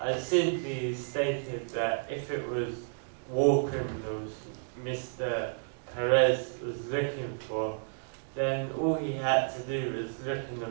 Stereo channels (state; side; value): silent; left; digital silence